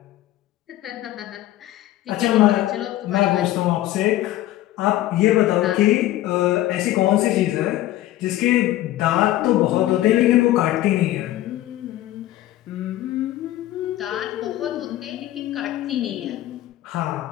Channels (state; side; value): quieter; right; 14.8 dB